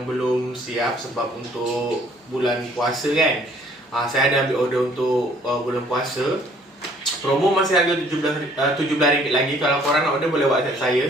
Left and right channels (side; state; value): both; normal; correlation 0.59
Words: belum siap sebab untuk bulan puasa kan. Saya ada ambil order untuk bulan puasa. Promo masih harga RM17 lagi. Kalau korang nak order boleh WhatsApp saya.